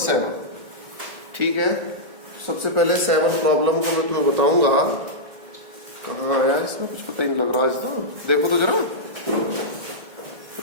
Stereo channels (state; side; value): late; left; 1.8 ms